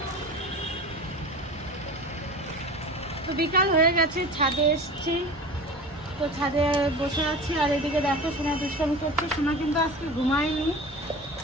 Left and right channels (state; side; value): normal; both; correlation 0.34